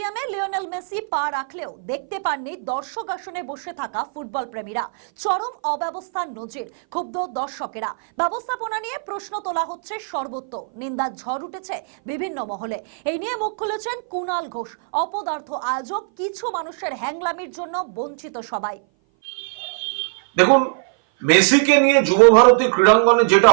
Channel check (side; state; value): left; silent; 58 dB below the other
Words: Lionel Messi পা রাখলেও দেখতে পাননি দর্শক আসনে বসে থাকা ফুটবল প্রেমীরা। চরম অব্যবস্থার নজির, ক্ষুব্ধ দর্শকেরা। ব্যবস্থাপনা নিয়ে প্রশ্ন তোলা হচ্ছে সর্বত্র, নিন্দার ঝড় উঠেছে বিভিন্ন মহলে। এই নিয়ে মুখ খুলেছেন কুণাল ঘোষ। অপদার্থ আয়োজক, কিছু মানুষের হ্যাংলামির জন্য বঞ্চিত সবাই। দেখুন, মেসিকে নিয়ে যুব ভারতী ক্রীড়াঙ্গনে যেটা